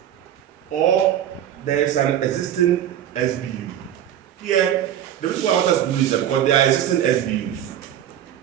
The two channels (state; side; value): quieter; left; 10.8 dB